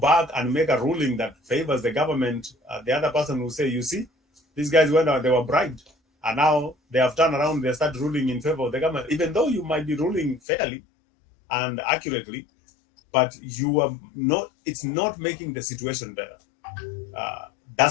and make a ruling that favors the government, the other person will say, you see, these guys went out, they were bribed. And now they have turned around, they start ruling in favor of the government, even though you might be ruling fairly and accurately, but you are not, it's not making the situation better.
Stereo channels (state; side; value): drops out; right; at 10.4 s